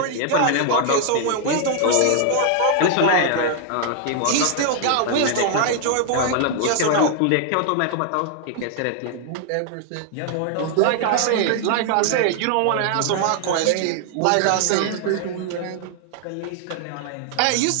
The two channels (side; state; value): both; different; correlation 0.00